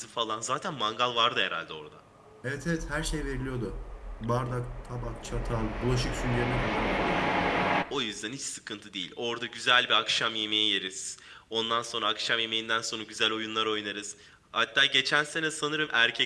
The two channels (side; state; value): both; identical; correlation 1.00